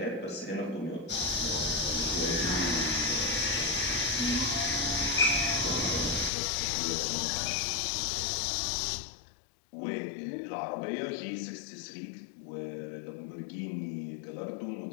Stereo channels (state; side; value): drops out; right; at 6.3 s